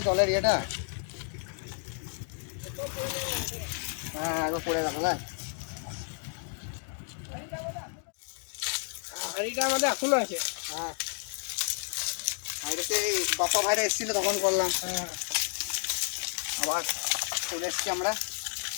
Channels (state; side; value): silent; right; 57 dB below the other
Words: জলের ইয়েটা। হ্যাঁ, একবার পড়ে গেল না। হাঁড়িটা আমাদের এখনো আছে। হ্যাঁ, ভাইরাতে এই বাপ্পা ভাইরা এসেছিল তখন করলাম। হ্যাঁ, আবার চলে এসেছি আমরা।